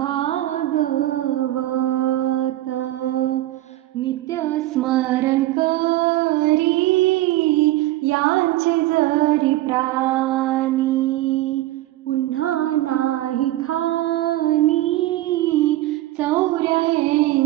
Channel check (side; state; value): left; quieter; 16.1 dB